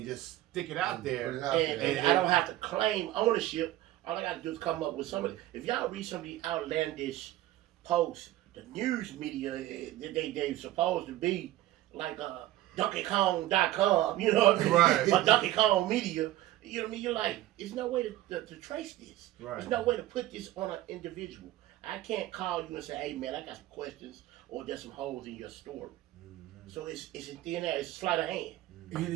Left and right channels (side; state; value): left; quieter; 14.9 dB